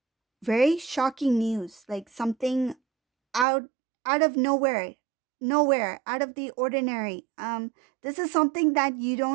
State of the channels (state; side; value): drops out; left; at 3.5 s